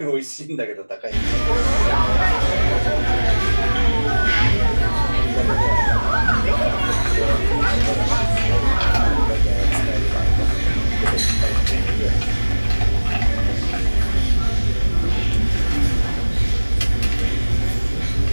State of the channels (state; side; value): inverted; both; correlation -1.00